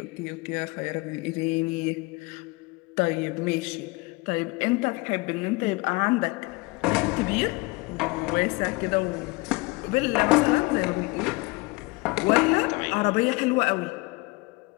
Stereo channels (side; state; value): right; quieter; 24.8 dB